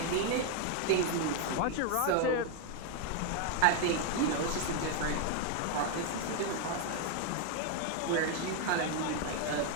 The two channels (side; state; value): both; different; correlation 0.00